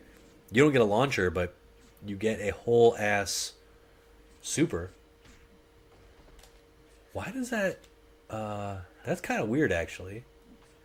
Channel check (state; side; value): identical; both; correlation 1.00